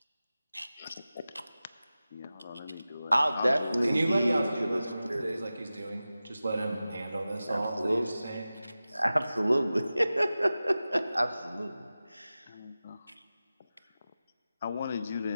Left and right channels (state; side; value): inverted; both; correlation -0.95